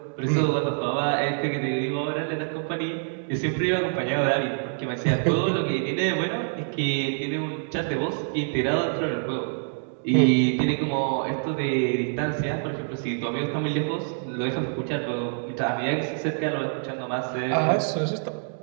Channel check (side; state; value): left; silent; digital silence